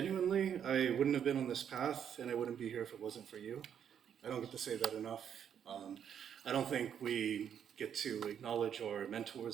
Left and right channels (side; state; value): left; quieter; 8.6 dB